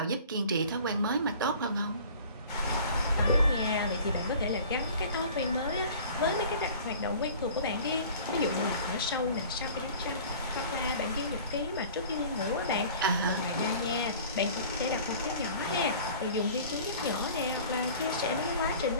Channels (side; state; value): both; inverted; correlation -0.45